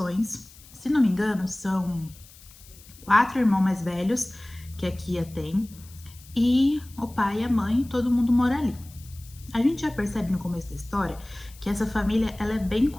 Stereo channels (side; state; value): left; noise; hiss, 22 dB below the sound